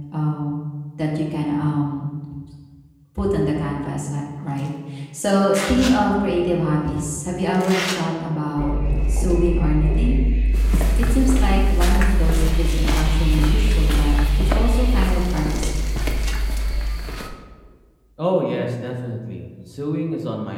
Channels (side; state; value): both; identical; correlation 1.00